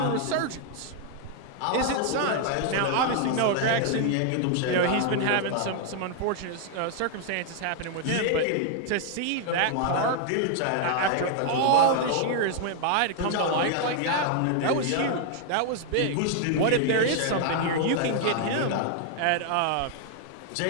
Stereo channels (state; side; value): different; both; correlation 0.00